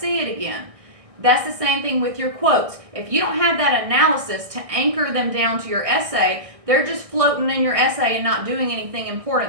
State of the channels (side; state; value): left; late; 1.6 ms